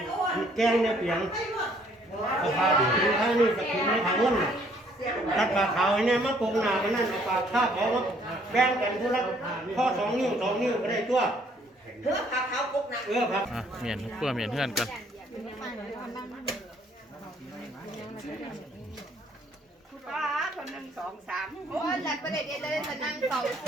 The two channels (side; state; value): both; normal; correlation 0.63